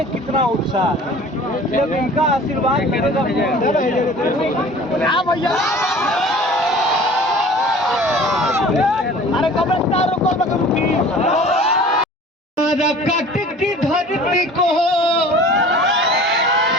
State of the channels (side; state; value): both; normal; correlation 0.45